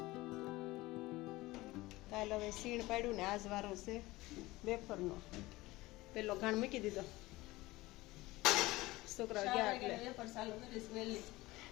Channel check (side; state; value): right; quieter; 19.6 dB